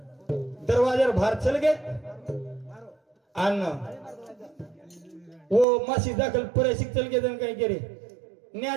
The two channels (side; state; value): left; drops out; at 5.7 s